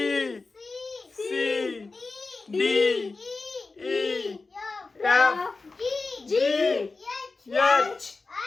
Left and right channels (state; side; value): quieter; right; 3.8 dB